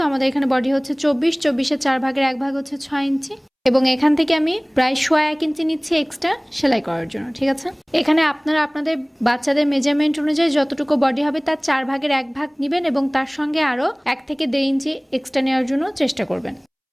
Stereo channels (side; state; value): both; identical; correlation 1.00